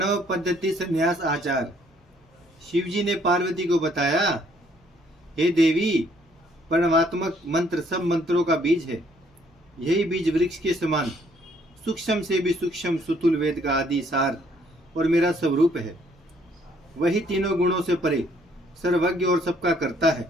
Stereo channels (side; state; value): both; normal; correlation 0.65